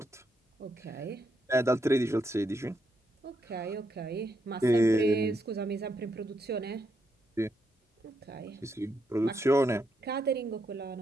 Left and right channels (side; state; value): both; normal; correlation 0.80